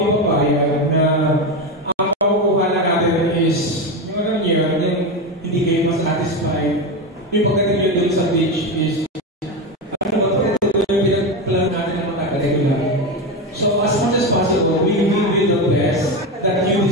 papayag na ang makukuha na natin is yung ano niya, hindi kayo masatisfied. Yung pagdating nyo doon sa beach is ano ba ito yung pinag-plan natin na matagal lang. So, as much as possible, we will do the best that you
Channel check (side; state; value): both; normal; correlation 0.16